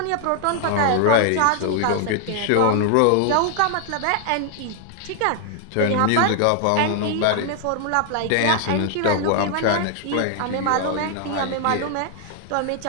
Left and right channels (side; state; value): both; different; correlation 0.00